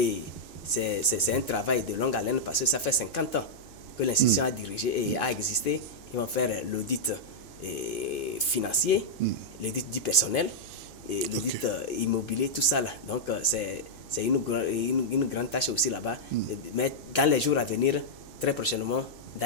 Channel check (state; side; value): noise; right; hum, 23 dB below the sound